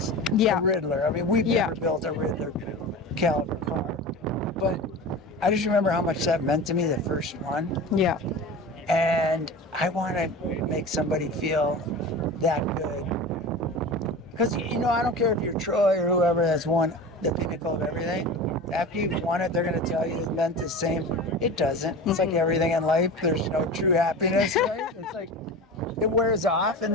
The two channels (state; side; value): normal; both; correlation 0.32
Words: a Riddler. I mean, we've never built a Riddler caliber car. But I just remember how much that meant to me, the first one. Yeah. And I want to make somebody feel that good. Because, you know, I don't care if you're Troy or whoever that's won the pinnacle of everything. After you've won it, they're going to tell you it meant the same. It doesn't. It's like everything in life. There's no true happiness, right? It's like it wears off, and